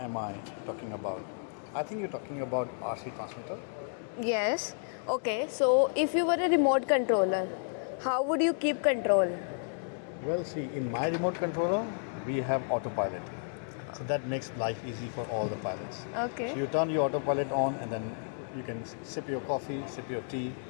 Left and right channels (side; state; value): right; silent; digital silence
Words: I talking about? I think you're talking about RC transmitter. Yes. Okay, so if you were a remote controller, how would you keep control? Well, see, in my remote controller, we have autopilot. So that makes life easy for all the pilots. Okay. So you turn your autopilot on and then you can sip your coffee, sip your tea,